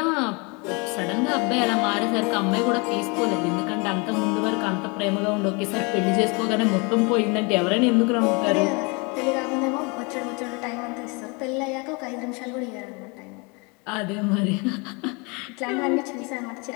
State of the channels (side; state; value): right; quieter; 30.4 dB